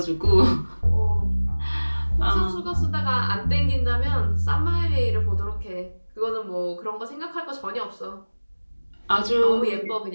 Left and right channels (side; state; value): both; inverted; correlation -1.00